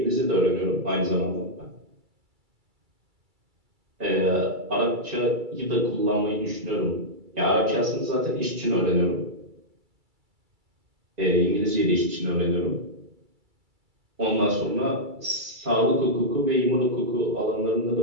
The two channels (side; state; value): left; late; 2.3 ms